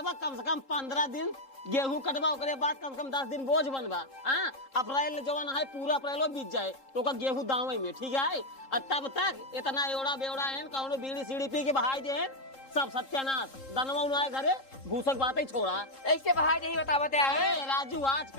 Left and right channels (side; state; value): right; late; 3.7 ms